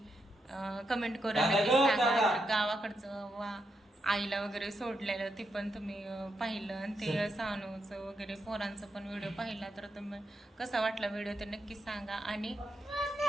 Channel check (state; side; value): normal; both; correlation 0.83